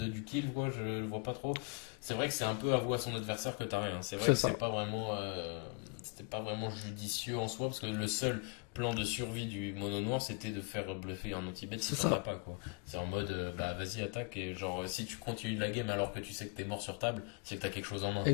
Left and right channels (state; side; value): quieter; right; 32.7 dB